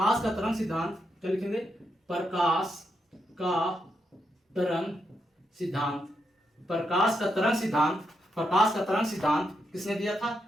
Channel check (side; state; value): both; normal; correlation 0.82